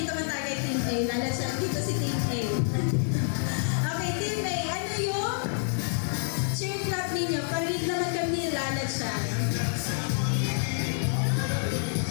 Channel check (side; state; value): right; silent; 59 dB below the other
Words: man tayo kay Team A. Lalansyan. Dito si Team A. Okay, Team A. Ano yung cheer clap ninyo? Parinig naman kami lalansyan.